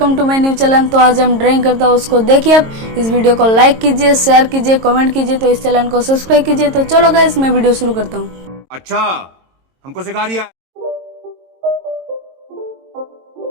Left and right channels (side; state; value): left; late; 22 ms